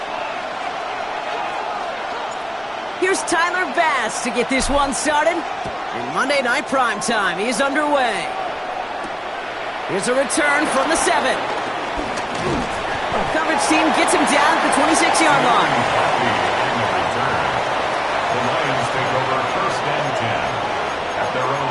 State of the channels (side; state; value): both; identical; correlation 1.00